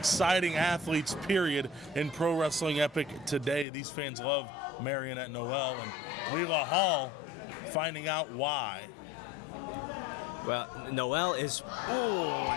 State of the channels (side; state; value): right; drops out; at 3.7 s